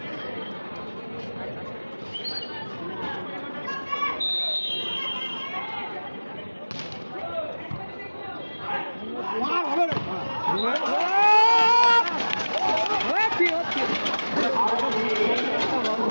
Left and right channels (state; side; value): inverted; both; correlation -1.00